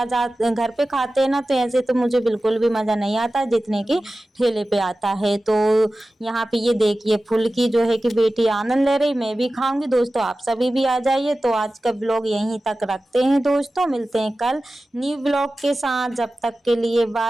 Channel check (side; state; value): both; normal; correlation 0.95